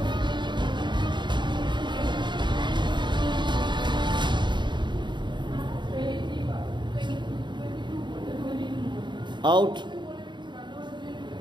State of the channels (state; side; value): late; left; 0.22 ms